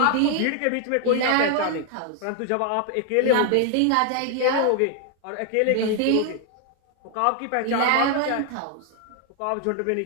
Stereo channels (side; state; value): both; different; correlation 0.00